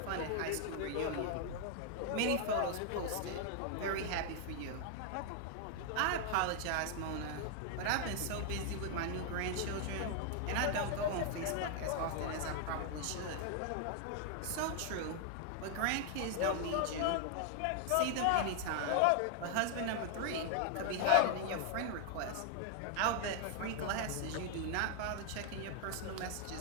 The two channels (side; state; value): both; different; correlation 0.00